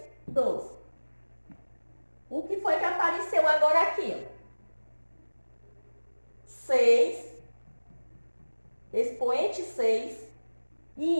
12. O que foi que apareceu agora aqui? 6, expoente 6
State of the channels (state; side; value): inverted; both; correlation -1.00